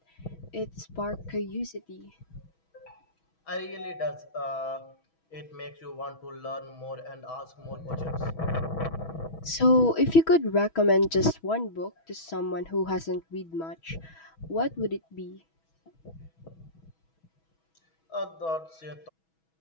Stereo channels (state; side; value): late; right; 6.2 ms